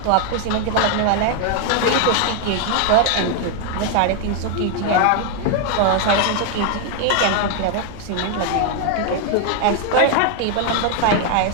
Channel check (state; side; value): different; both; correlation 0.00